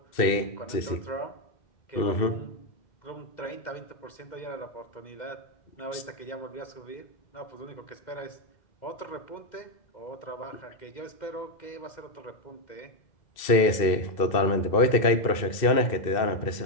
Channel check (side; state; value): right; late; 2.1 ms